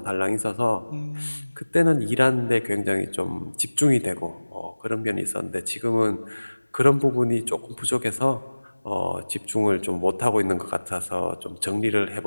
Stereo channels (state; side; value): inverted; both; correlation -1.00